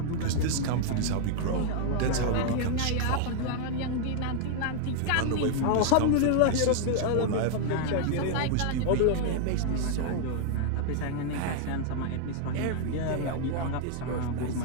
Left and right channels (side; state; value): both; different; correlation 0.00